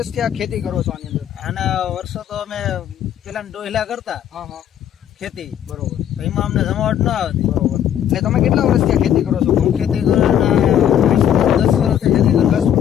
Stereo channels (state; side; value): quieter; right; 10.1 dB